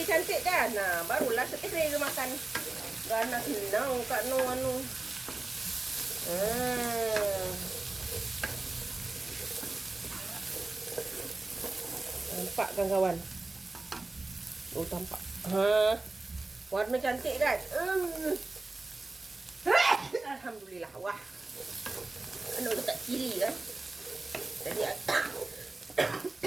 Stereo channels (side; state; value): left; quieter; 3.2 dB